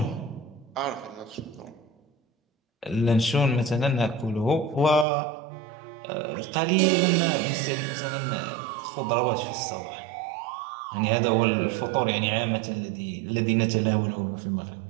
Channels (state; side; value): drops out; left; at 5.1 s